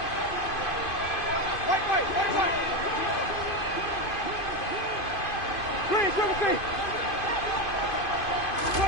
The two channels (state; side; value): late; right; 2.5 ms